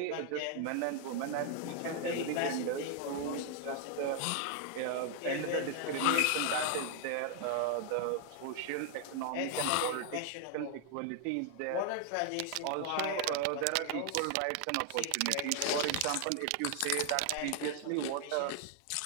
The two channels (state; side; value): different; both; correlation 0.00